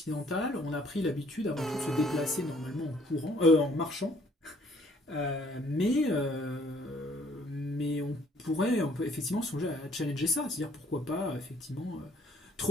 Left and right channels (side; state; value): both; normal; correlation 0.61